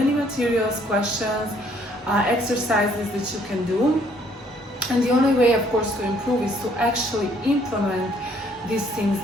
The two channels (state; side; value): normal; both; correlation 0.64